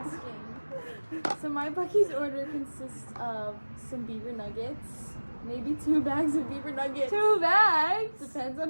So my Buc-ee's order consists of some beaver nuggets, maybe 2 bags of beaver nuggets. 2 bags? Depends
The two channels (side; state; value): both; inverted; correlation -1.00